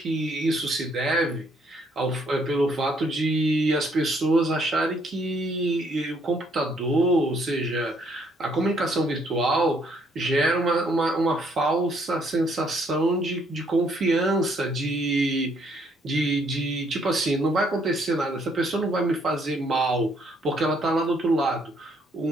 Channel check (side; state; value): both; normal; correlation 0.68